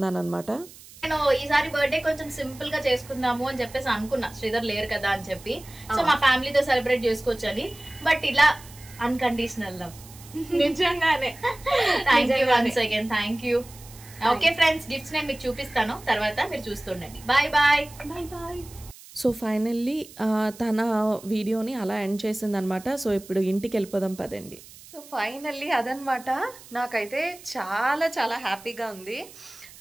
అనమాట. నేను ఈసారి బర్త్డే కొంచెం సింపుల్ గా చేసుకుందాము అని చెప్పేసి అనుకున్నా, శ్రీధర్ లేరు కదా అని చెప్పి. సో మా ఫ్యామిలీతో సెలబ్రేట్ చేసుకోవచ్చు అని. బట్ ఇలా అన్కండిషనల్ లవ్ నిజంగానే. Thank you once again, thank you. Okay friends, gifts నేను మీకు చూపిస్తాను తర్వాత, మీరు చూస్తుండండి. Bye bye bye bye. So finally తన వీడియోని అలా ఎండ్ చేసిందనమాట. సో ఇప్పుడు ఇంటికి వెళ్ళిపోదాం పదండి. సో ఫైనల్లీ అదనమాట. నాకైతే చాలా చాలా హ్యాపీగా ఉంది.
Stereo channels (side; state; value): right; noise; hiss, 20 dB below the sound